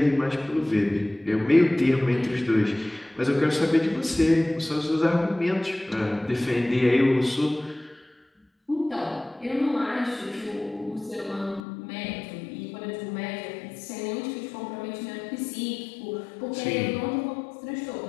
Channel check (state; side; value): drops out; right; at 11.6 s